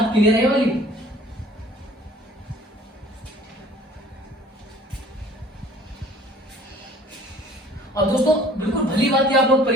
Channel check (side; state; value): both; normal; correlation 0.52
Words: क्लियर है वाली? और दोस्तों बिल्कुल भली बात आप लोग